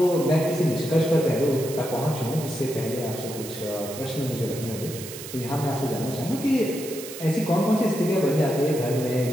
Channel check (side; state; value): right; noise; hiss, 12 dB below the sound